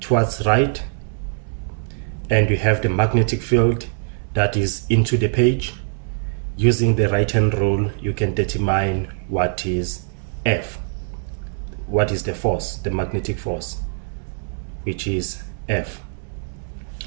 right, and you have the magnetic field that is into the page, using the right hand rule you can determine what is F, what is the force, the magnetic force, which is F.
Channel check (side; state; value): left; silent; 64 dB below the other